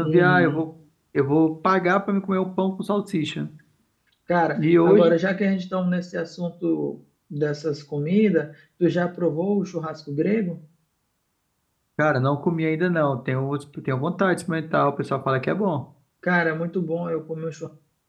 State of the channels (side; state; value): both; identical; correlation 1.00